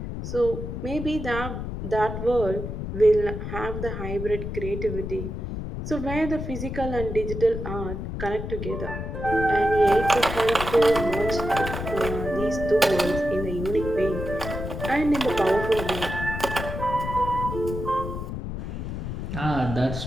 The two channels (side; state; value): left; noise; rumble, 5 dB below the sound